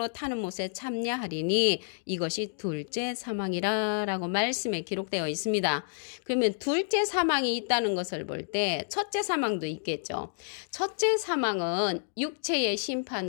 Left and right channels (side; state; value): right; silent; digital silence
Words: 타는 못에 참여하리니 이것이 둘째 사망이라 라고 말씀에 기록되어 있습니다. 그러면 둘째 사망이 있다는 것을 볼 때 첫째 사망도 있겠죠. 첫째 사망은 육체의